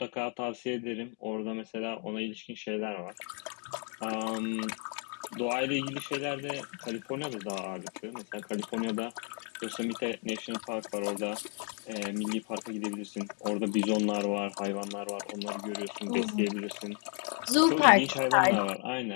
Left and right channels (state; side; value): quieter; right; 39.8 dB